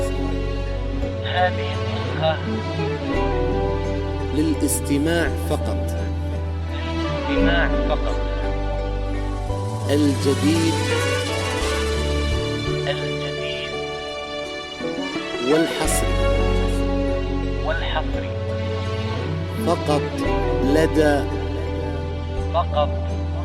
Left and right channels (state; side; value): identical; both; correlation 1.00